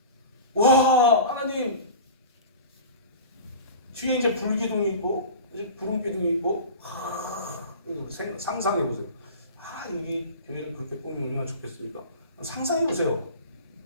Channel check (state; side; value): inverted; both; correlation -0.36